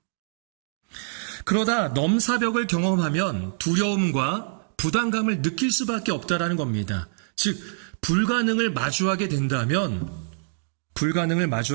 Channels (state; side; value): silent; left; digital silence